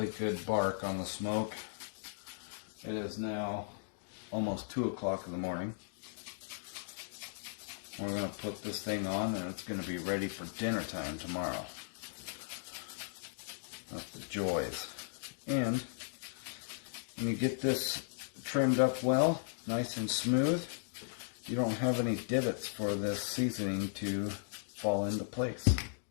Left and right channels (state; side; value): silent; right; digital silence